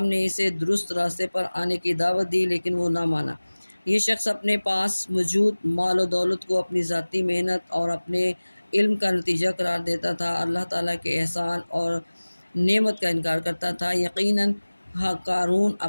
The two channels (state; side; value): inverted; both; correlation -1.00